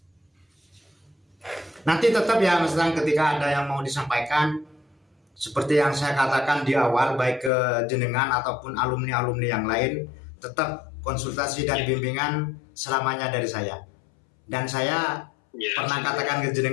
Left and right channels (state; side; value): drops out; right; at 7.5 s